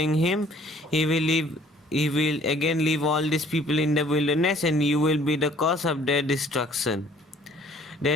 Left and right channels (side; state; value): both; normal; correlation 0.57